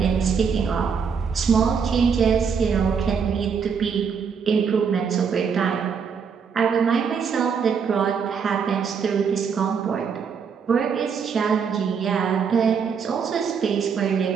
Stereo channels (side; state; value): left; quieter; 6.4 dB